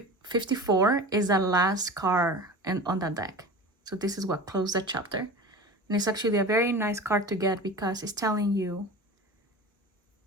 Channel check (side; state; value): both; normal; correlation 0.33